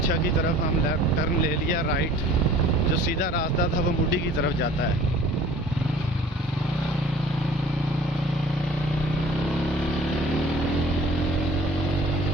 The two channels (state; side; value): normal; both; correlation 0.48